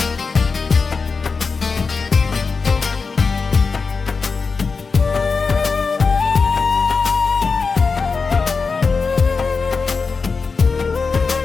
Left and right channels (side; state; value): right; quieter; 4.7 dB